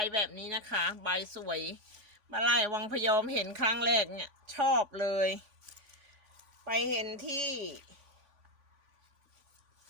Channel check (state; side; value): late; left; 3.5 ms